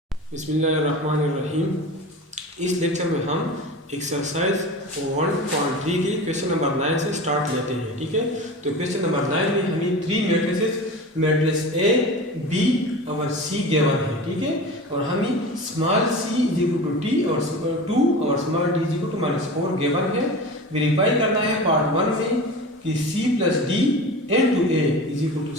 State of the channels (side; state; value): both; normal; correlation 0.33